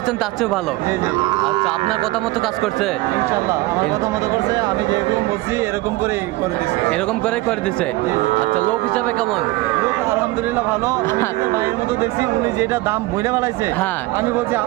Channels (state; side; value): quieter; left; 19.3 dB